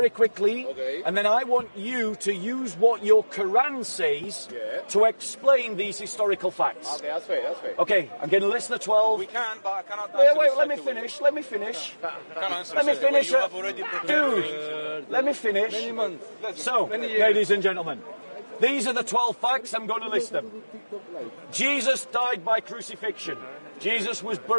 quickly, and then I want you to use what your Quran says to explain these historical facts. Okay, that's fair, that's fair. Okay, I'm going to list the 12. We can, but I cannot Wait, answer wait, this let me straight away. finish, let me finish. Let me finish. You have already prepared Dude, let me finish. So, ladies and gentlemen, these are the 12 facts, I'm going to list them. Jesus died by crucifixion. Jesus was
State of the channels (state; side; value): inverted; both; correlation -1.00